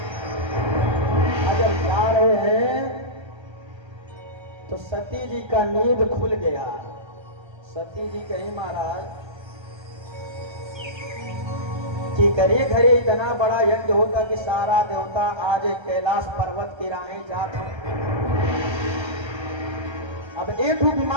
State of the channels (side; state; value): left; late; 1.3 ms